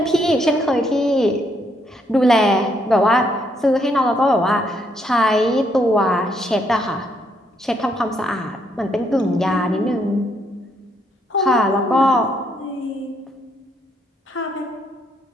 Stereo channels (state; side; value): normal; both; correlation 0.73